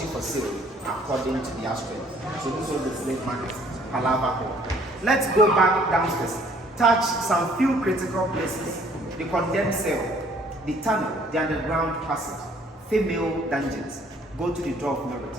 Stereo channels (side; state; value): both; normal; correlation 0.59